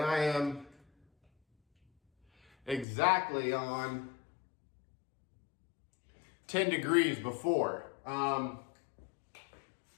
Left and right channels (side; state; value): right; drops out; at 2.9 s